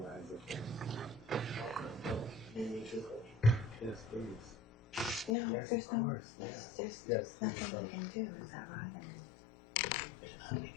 there's nothing we can do, is that right?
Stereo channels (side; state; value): right; drops out; at 5.4 s